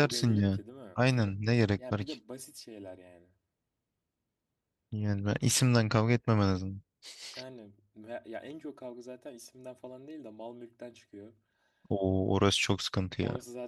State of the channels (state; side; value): identical; both; correlation 1.00